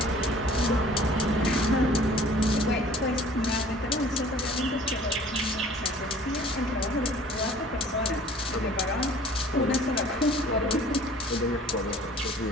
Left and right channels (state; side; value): normal; both; correlation 0.51